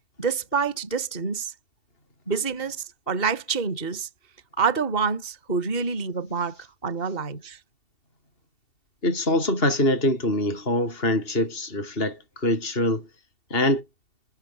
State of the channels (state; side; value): late; right; 2.7 ms